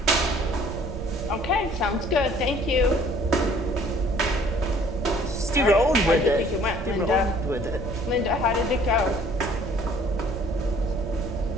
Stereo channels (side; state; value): right; noise; rumble, 10 dB below the sound